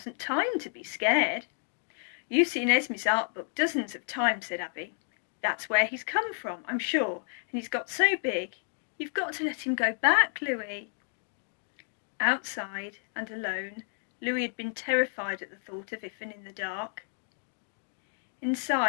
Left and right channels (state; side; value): silent; right; 57 dB below the other